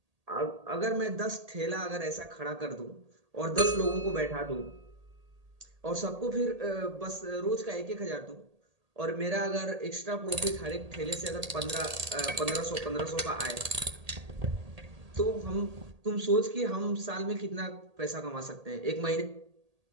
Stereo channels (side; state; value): left; late; 1.8 ms